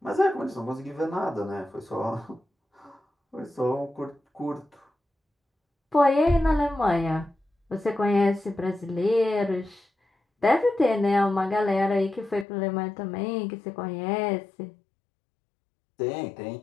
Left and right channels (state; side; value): drops out; right; at 12.5 s